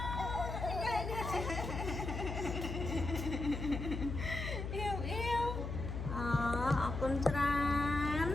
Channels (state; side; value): noise; left; hum, 4 dB below the sound